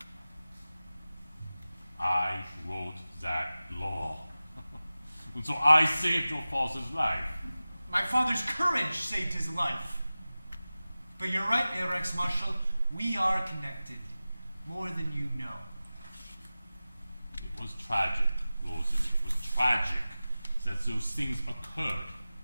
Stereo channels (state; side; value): inverted; both; correlation -0.96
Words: I wrote that law. And so I saved your father's life. My father's courage saved his life. But you're right, Reichsmarschall, we are connected, more than you know. It was tragic, Rosen. It was tragic that those things occurred.